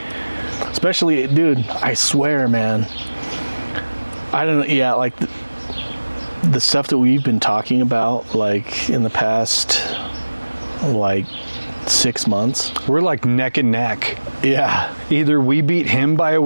Especially, dude, I swear, man. I don't know, yeah, like the stuff that we've been talking about, like, in the past, like, 6 months. We're like neck and neck. Yeah. Either we beat him by a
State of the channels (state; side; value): inverted; both; correlation -1.00